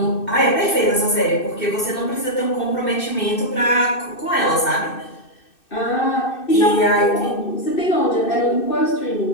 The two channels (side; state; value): right; late; 2.6 ms